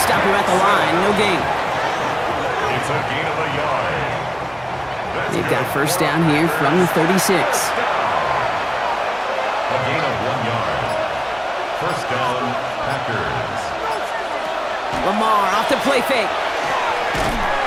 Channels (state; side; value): noise; right; hum, 25 dB below the sound